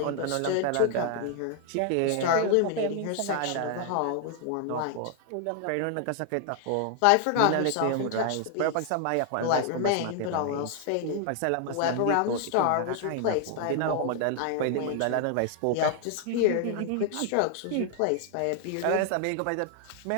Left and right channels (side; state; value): both; different; correlation 0.00